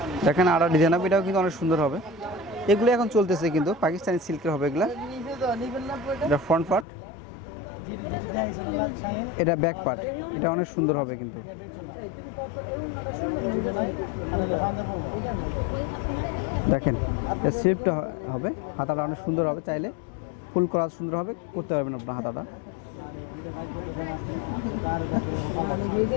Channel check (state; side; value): drops out; right; at 6.9 s